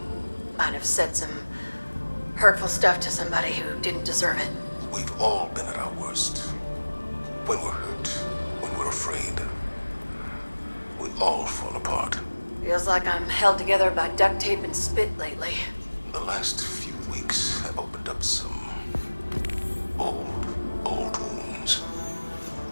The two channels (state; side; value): inverted; both; correlation -1.00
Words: Might have said some hurtful stuff to somebody who didn't deserve it. We've all been at our worst. When we're hurt, when we're afraid, we all fall apart. Feels like I'm held together by duct tape and spit lately. The last few weeks have opened up some old wounds.